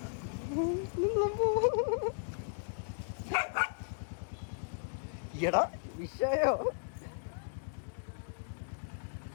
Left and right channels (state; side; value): silent; right; digital silence